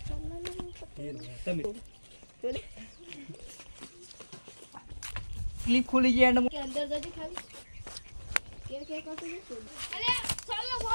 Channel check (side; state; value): both; inverted; correlation -1.00